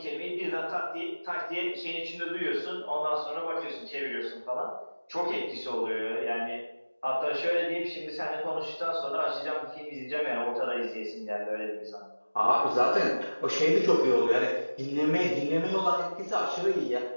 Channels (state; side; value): inverted; both; correlation -1.00